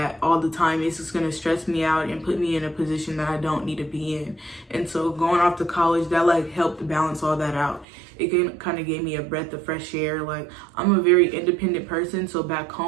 all the time. It's just gonna stress me out and put me in a position that I don't need to be in. And so going off to college, that like helped balance all that out. it kind of gave me a breath of fresh air. Like, I'm a very independent person, so back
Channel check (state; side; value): drops out; left; at 7.9 s